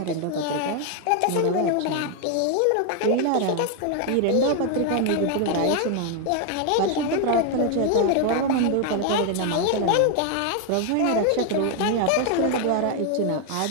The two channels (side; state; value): both; different; correlation 0.01